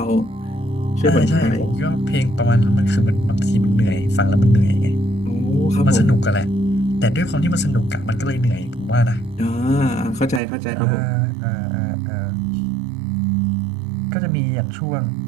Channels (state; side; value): drops out; left; at 10.4 s